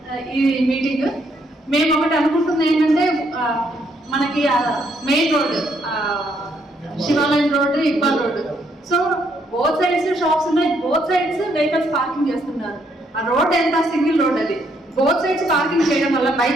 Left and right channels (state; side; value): normal; both; correlation 0.72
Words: ఈ మీటింగ్. మేము ఒకటి అనుకుంటుంది ఏంటంటే, మనకి మెయిన్ రోడ్ శివాలయం road, Iqbal road, so both sides shops ఉన్నాయి, బోత్ సైడ్స్ వెహికల్స్ పార్కింగ్ చేస్తున్నారు. ఆ రోడ్ ఎంత సింగిల్ రోడ్ అది, బోత్ సైడ్స్ పార్కింగ్ చేయడం వల్ల,